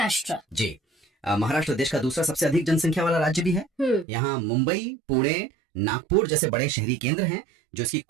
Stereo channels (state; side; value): drops out; left; at 4.0 s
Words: जी, महाराष्ट्र देश का दूसरा सबसे अधिक जनसंख्या वाला राज्य भी है। यहाँ मुंबई, पुणे, नागपुर जैसे बड़े शहरी केंद्र हैं जो इसकी